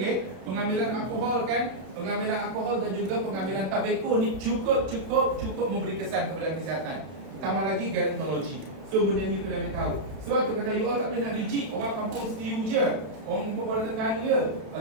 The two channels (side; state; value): left; late; 32 ms